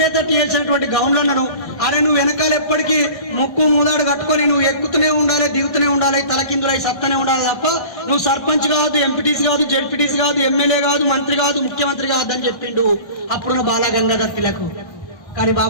చేసినటువంటి గౌన్లను, అరే నువ్వు వెనకాల ఎప్పటికీ ముక్కు ముదాడు కట్టుకొని నువ్వు ఎక్కుతూనే ఉండాలి, దిగుతూనే ఉండాలి, తలకిందులై సత్తనే ఉండాలి తప్ప నువ్వు సర్పంచ్ కాదు, ఎంపీటీసీ కాదు, జెడ్పీటీసీ కాదు, ఎమ్మెల్యే కాదు, మంత్రి కాదు, ముఖ్యమంత్రి కాదు అని చెప్పిండు అప్పుడున్న బాలా గంగాధర్ తిలక్. కానీ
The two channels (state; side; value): late; right; 1.6 ms